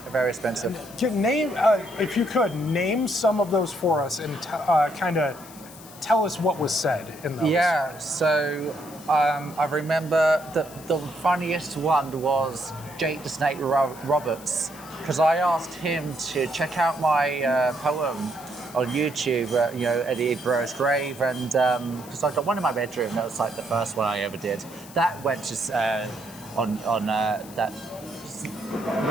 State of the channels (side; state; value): left; noise; hiss, 19 dB below the sound